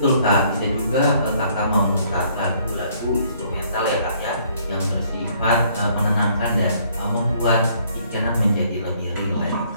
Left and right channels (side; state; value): both; inverted; correlation -0.63